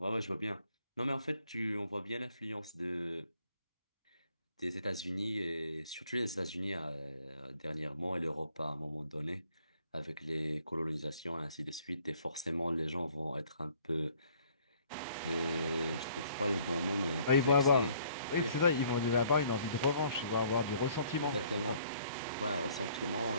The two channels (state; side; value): inverted; both; correlation -0.60